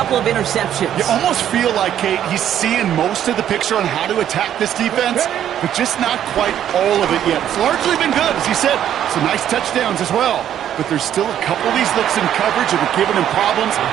of interceptions. You almost feel like, Kate, he's seeing most of the picture on how to attack this defense, but just not quite all of it yet. It's largely been good, as he said. Some nice touchdowns as well. But there's still a couple of these looks in coverage that are giving him problems,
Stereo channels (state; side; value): quieter; left; 10.5 dB